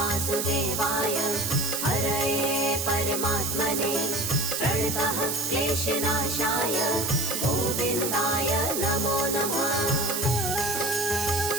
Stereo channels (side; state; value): right; noise; hiss, 1 dB below the sound